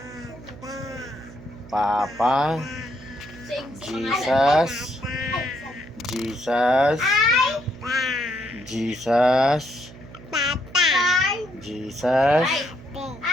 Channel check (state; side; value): noise; right; hum, 18 dB below the sound